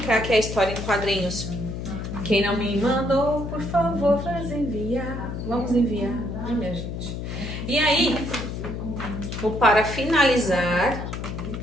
aqui é a história em quadrinhos. Quem não me mandou, por favor, faz enviar. Vamos enviar, né, minha gente? E aí, para finalizar,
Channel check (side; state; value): left; noise; hum, 6 dB below the sound